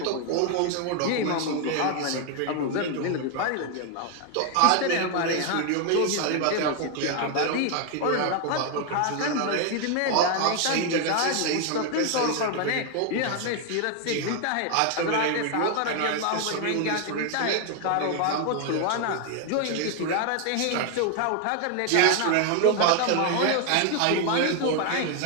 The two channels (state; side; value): different; both; correlation 0.01